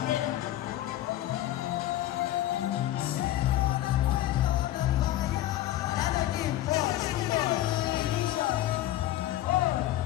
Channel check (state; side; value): quieter; right; 14.1 dB